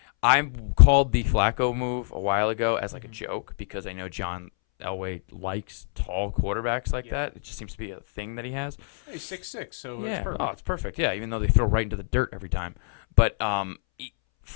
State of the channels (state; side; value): silent; right; 61 dB below the other